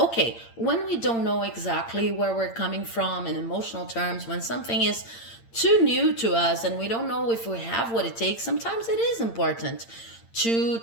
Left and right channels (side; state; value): right; late; 8.8 ms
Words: when we don't know exactly where we're coming from in emotional terms, when something is too new to us and we don't know if we have what it takes, sometimes it is important to